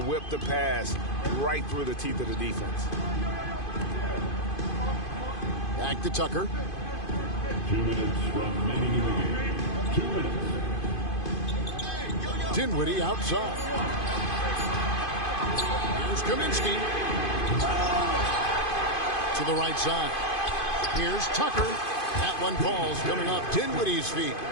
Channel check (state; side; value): late; right; 2.5 ms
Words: whip the pass right through the teeth of the defense. Back to Tucker. 2 minutes remaining in the game. 2 minutes. Dinwiddie outside. Here's Kaminsky. To the right side. Here's Tucker. That one falls coming off Dinwiddie's feet.